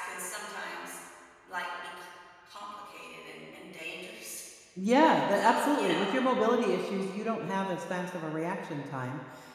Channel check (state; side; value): identical; both; correlation 1.00